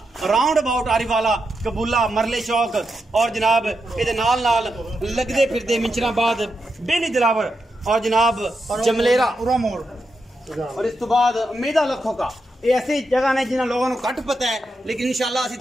राउंड अबाउट आरी वाला कबूला मरले चौक और जनाब ये नाल नाल लगते फिरते मिंचराबाद बेली दिलावर और जनाब जमलेरा मोड़ और इस तो बाद उम्मीदा लखों का ये ऐसी जगह ने जिन्हें लोगों को घट पता है लेकिन इंशाल्लाह असि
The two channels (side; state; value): both; normal; correlation 0.86